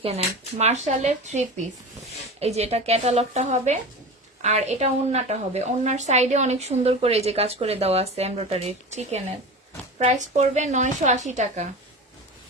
মার্শালের 3 পিস, এই যে এটা ক্যাটালগটা হবে আর এটা ওড়নাটা হবে। ওড়নার সাইডে অনেক সুন্দর করে এই যে কাজ করে দেওয়া আছে এমব্রয়ডারি চিকেনের। প্রাইস পড়বে 980 টাকা।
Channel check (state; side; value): normal; both; correlation 0.30